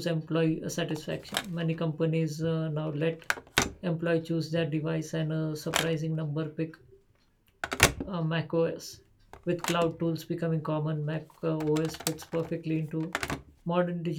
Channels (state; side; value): identical; both; correlation 1.00